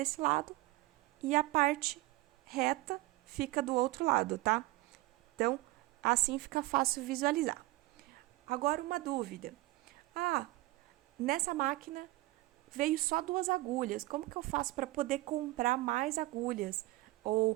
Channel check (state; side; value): quieter; left; 19.9 dB